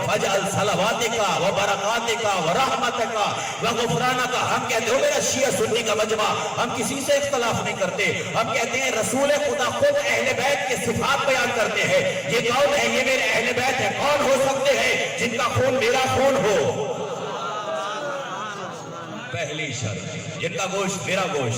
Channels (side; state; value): both; identical; correlation 1.00